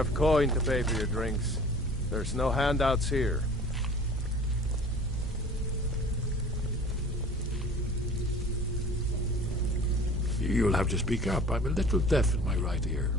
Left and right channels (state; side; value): normal; both; correlation 0.45